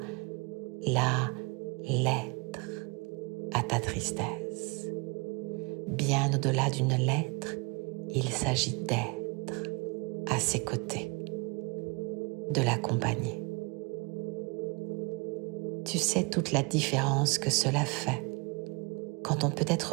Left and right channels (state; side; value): quieter; left; 29.5 dB